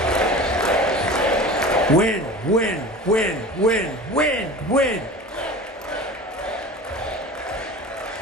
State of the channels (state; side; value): normal; both; correlation 0.36